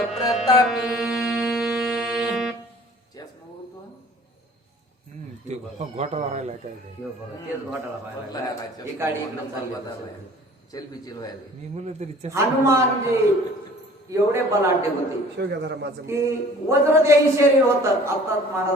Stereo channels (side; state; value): both; normal; correlation 0.49